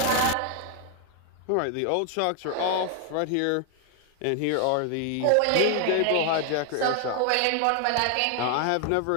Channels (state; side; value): different; both; correlation 0.00